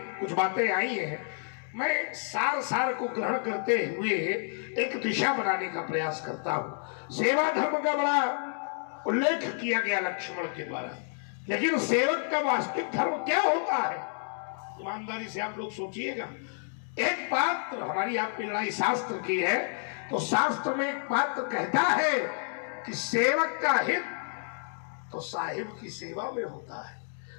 कुछ बातें आई हैं, मैं सार सार को ग्रहण करते हुए एक दिशा बनाने का प्रयास करता हूं। सेवा धर्म का बड़ा उल्लेख किया गया लक्ष्मण के द्वारा, लेकिन सेवक का वास्तविक धर्म क्या होता है? ईमानदारी से आप लोग सोचिएगा। एक बात हमारी आपकी लड़ाई शास्त्र की है, तो शास्त्र में एक बात कहता है कि सेवक का हित तो साहिब की सेवा में होता है।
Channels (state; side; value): silent; right; 58 dB below the other